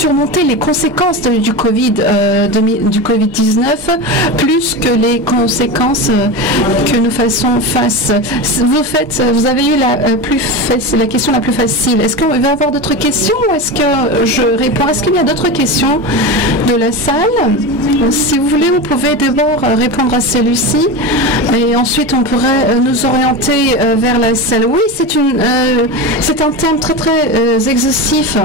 les conséquences du Covid-19 plus que les conséquences que nous faisons face. Vous avez eu la question la plus facile. Est-ce qu'on va avoir d'autres questions ou est-ce que je réponds? Est-ce qu'il y a d'autres questions de la salle? Si vous voulez, vous pouvez d'abord répondre à celui-ci et ensuite on pourrait nous orienter vers la salle. Oui, c'est un thème très très exhaustif.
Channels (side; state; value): both; normal; correlation 0.23